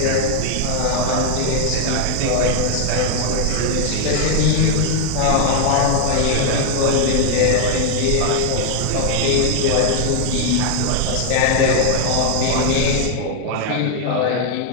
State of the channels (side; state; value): both; different; correlation 0.00